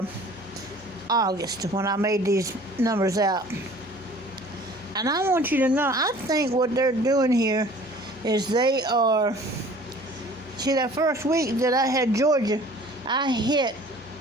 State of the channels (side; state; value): both; normal; correlation 0.49